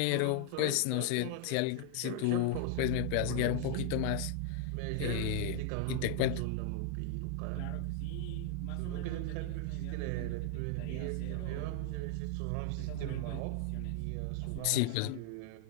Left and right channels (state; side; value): different; both; correlation 0.00